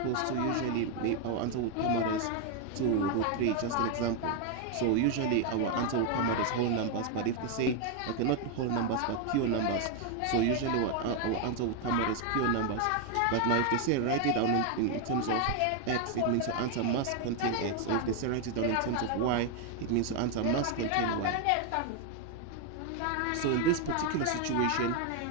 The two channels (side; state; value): both; different; correlation 0.01